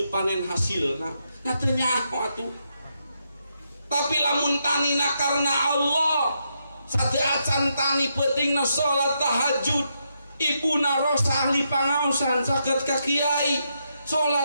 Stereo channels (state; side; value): inverted; both; correlation -0.81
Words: panen hasilna nya teu nyaho atuh tapi lamun tanina karena Allah sate acan tani pentingna salat tahajud ibuna rosa ahli pangaosan saged ka kiai